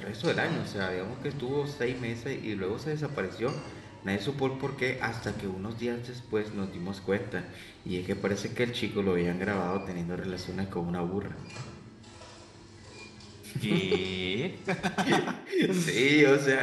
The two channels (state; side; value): identical; both; correlation 1.00